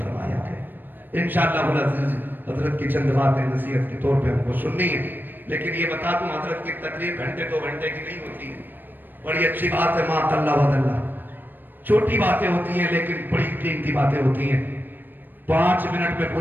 ہے۔ انشاءاللہ العزیز حضرت کی چند باتیں نصیحت کے طور پہ ہم کو سننی ہے، لیکن یہ بتا دوں حضرت کی تقریر گھنٹے 2 گھنٹے کی نہیں ہوتی ہے۔ بڑی اچھی بات ہے، ما اللہ ود اللہ، چھوٹی باتیں ہوتی ہیں لیکن بڑی قیمتی باتیں ہوتی ہیں۔ 5 منٹ میں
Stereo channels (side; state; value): left; late; 0.092 ms